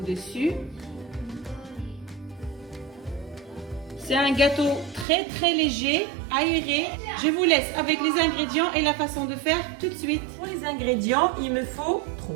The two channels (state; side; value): drops out; left; at 5.1 s